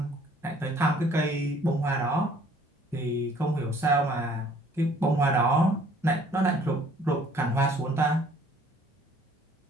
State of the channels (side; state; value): both; normal; correlation 0.57